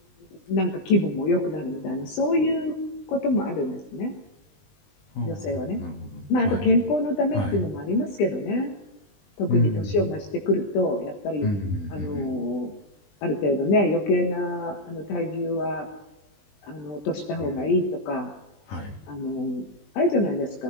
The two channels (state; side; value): late; right; 20 ms